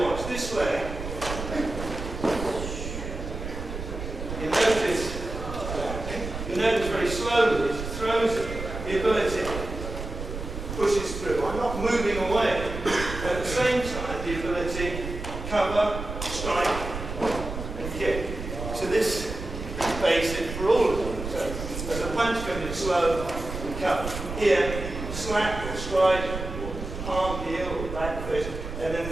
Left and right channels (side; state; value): right; noise; rumble, 7 dB below the sound